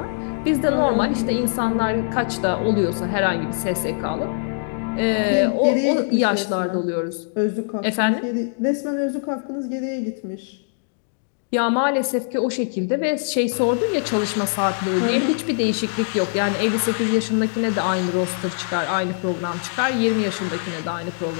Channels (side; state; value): right; silent; digital silence